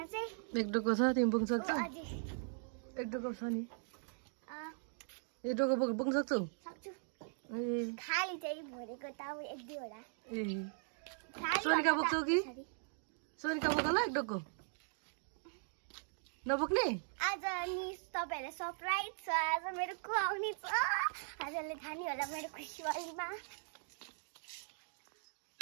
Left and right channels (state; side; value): silent; left; digital silence